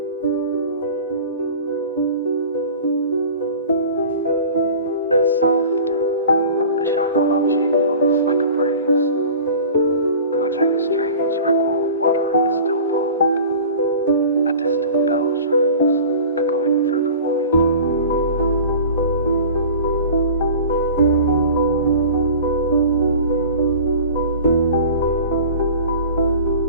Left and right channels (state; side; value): inverted; both; correlation -0.40